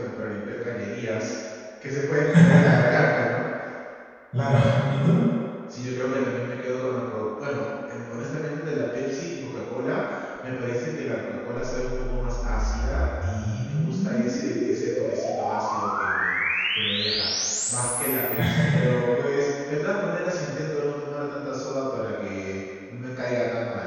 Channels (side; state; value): both; identical; correlation 1.00